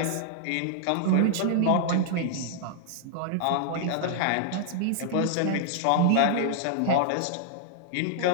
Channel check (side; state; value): both; different; correlation -0.01